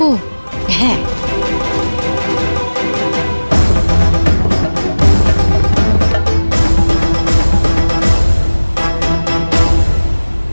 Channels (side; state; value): both; inverted; correlation -1.00